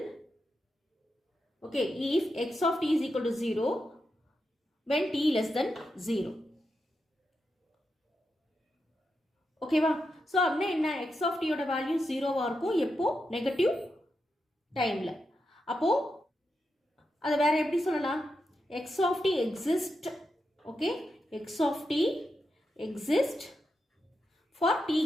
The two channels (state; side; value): normal; both; correlation 0.86